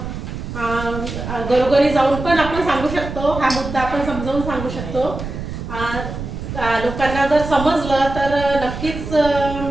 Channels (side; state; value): right; noise; rumble, 8 dB below the sound